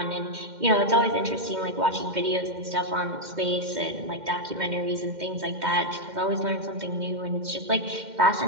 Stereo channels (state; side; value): late; left; 2.1 ms